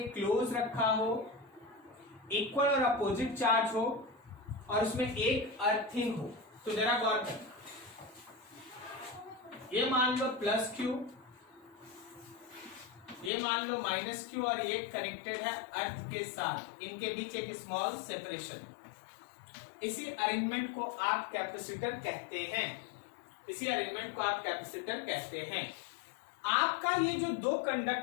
क्लोज रखा हो, इक्वल और अपोजिट चार्ज हो, और उसमें एक अर्थिंग हो। तो जरा गौर करना, ये मान लो प्लस क्यू, ये मान लो माइनस क्यू, और ये कनेक्टेड है अर्थ के साथ, इनके बीच एक स्मॉल सेपरेशन। इसी अरेंजमेंट को आप कैपेसिटर कहते हैं, इसी अरेंजमेंट को आप कैपेसिटर कहते हैं। आपका ये जो दो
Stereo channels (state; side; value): drops out; right; at 13.3 s